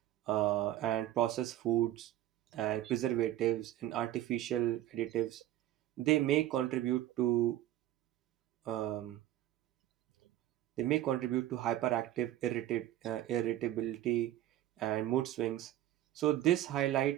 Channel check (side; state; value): left; quieter; 13.5 dB